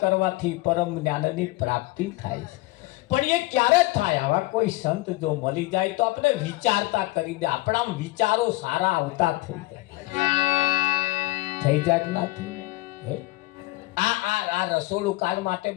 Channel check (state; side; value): quieter; right; 20.4 dB